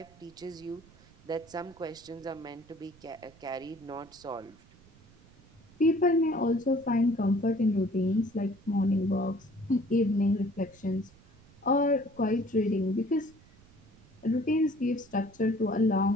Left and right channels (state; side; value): noise; right; rumble, 26 dB below the sound